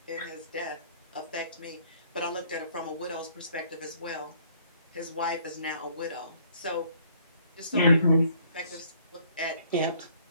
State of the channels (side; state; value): both; inverted; correlation -0.61